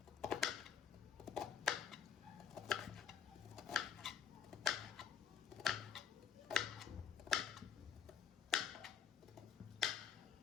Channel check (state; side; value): quieter; right; 8.2 dB